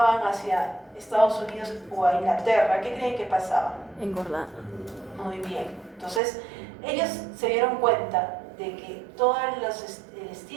hacia Estados Unidos o a Inglaterra, ¿qué creen que pasaba? Engordar. Muy bien. Entonces, ellos se dieron cuenta de que todo el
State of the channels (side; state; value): left; drops out; at 6.2 s